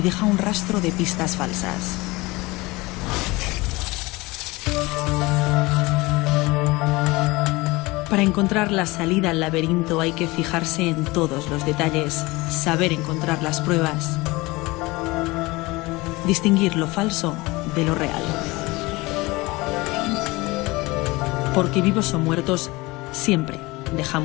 un rastro de pistas falsas. Para encontrar la salida al laberinto hay que fijarse en todos los detalles, saber encontrar las pruebas, distinguir lo falso de lo real. Porque vivos o muertos, siempre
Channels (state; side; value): quieter; right; 22.4 dB